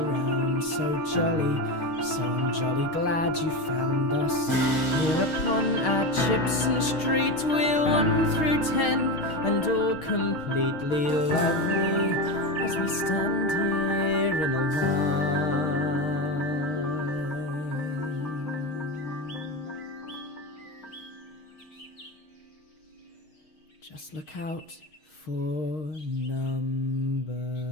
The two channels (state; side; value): late; right; 6.4 ms